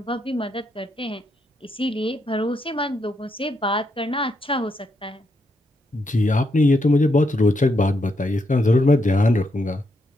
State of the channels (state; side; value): normal; both; correlation 0.79